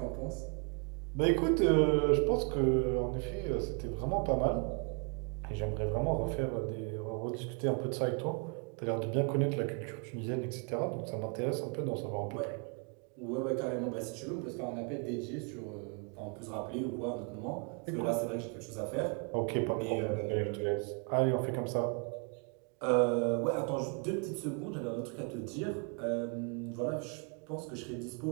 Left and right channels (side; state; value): left; quieter; 38.3 dB